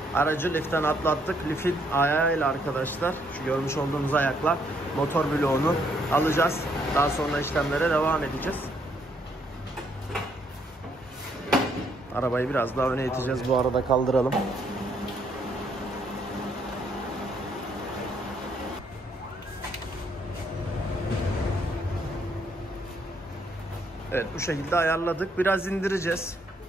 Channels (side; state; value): both; normal; correlation 0.71